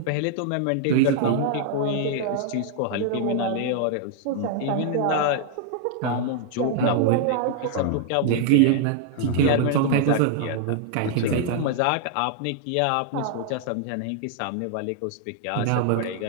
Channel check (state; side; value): different; both; correlation 0.00